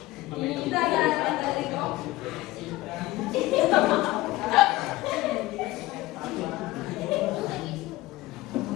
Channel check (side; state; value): right; quieter; 18.7 dB